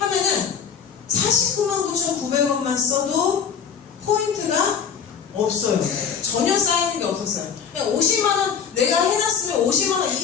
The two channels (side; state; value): right; quieter; 6.8 dB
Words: 499,900원만 써도 포인트가 없어요. 전혀 쌓이는 게 없었어요. 그냥 50만원 내가 해놨으면 50만원